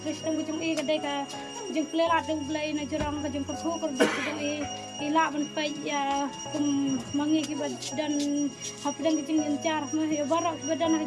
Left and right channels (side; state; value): both; identical; correlation 1.00